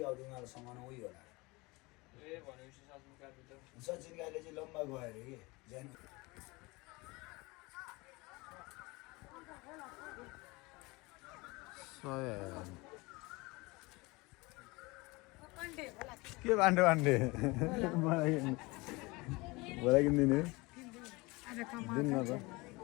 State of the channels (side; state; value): right; quieter; 24.2 dB